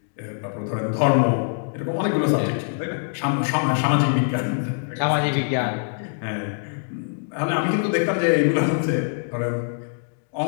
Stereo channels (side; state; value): right; silent; digital silence